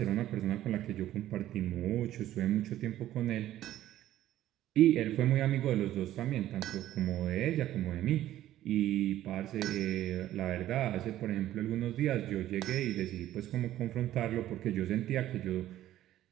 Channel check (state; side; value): quieter; left; 13.4 dB